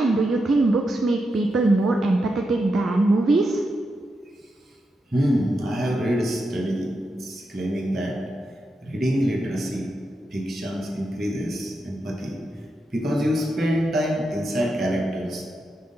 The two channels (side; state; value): both; normal; correlation 0.86